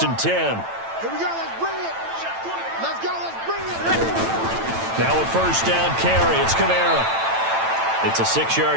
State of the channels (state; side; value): late; left; 9.0 ms